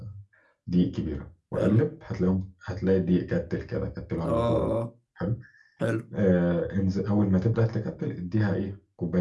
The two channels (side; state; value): both; identical; correlation 1.00